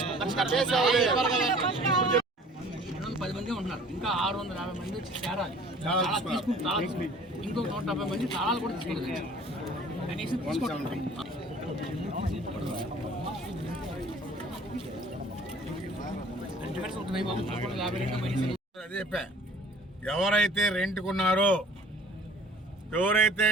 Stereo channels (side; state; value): both; normal; correlation 0.50